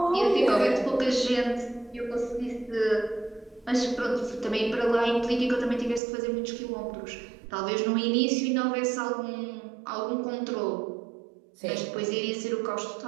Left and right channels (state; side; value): drops out; left; at 6.0 s